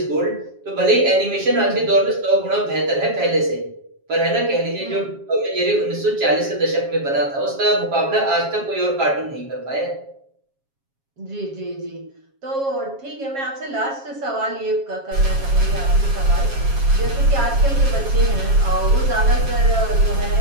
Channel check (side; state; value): left; late; 7.3 ms